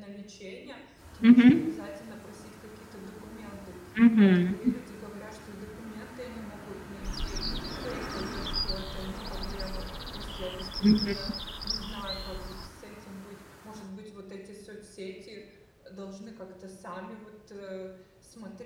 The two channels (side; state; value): both; identical; correlation 1.00